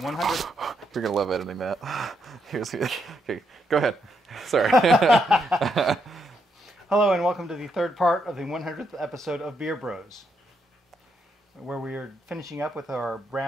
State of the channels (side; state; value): both; normal; correlation 0.78